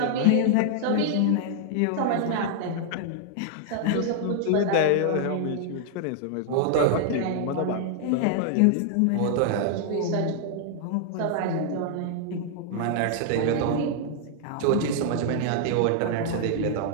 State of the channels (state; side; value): different; both; correlation 0.00